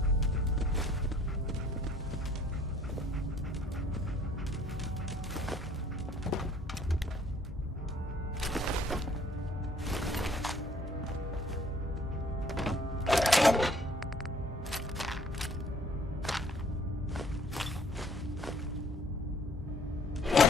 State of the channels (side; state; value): both; normal; correlation 0.58